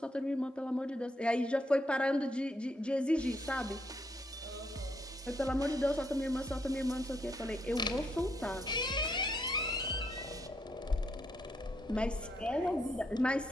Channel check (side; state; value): both; normal; correlation 0.76